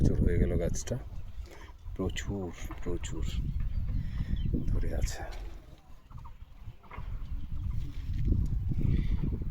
হয়ে গেল গাছটা, প্রচুর ধরে আছে,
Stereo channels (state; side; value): identical; both; correlation 1.00